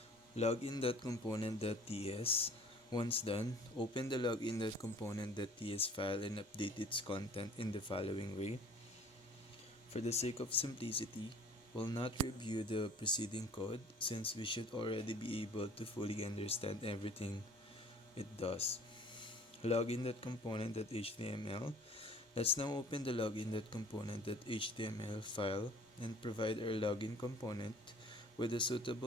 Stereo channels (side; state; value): both; normal; correlation 0.51